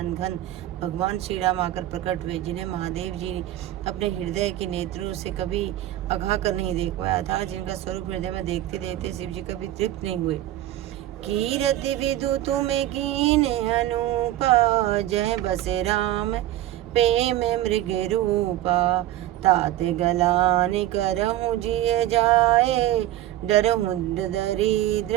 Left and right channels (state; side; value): quieter; left; 14.1 dB